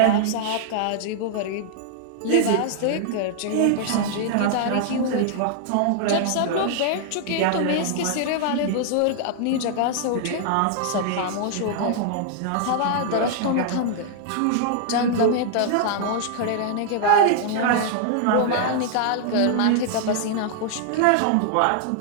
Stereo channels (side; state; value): both; different; correlation -0.01